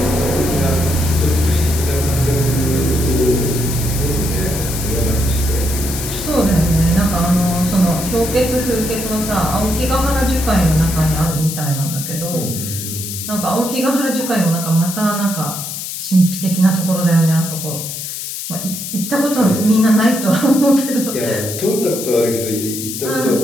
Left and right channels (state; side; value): noise; left; hiss, 7 dB below the sound